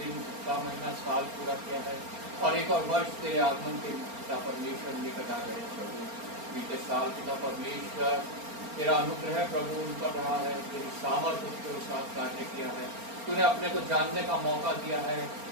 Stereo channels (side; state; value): left; late; 4.3 ms